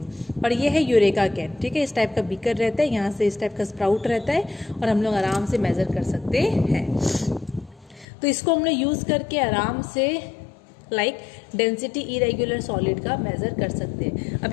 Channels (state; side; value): drops out; right; at 8.1 s